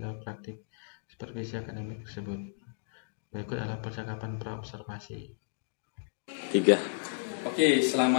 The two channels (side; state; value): right; silent; digital silence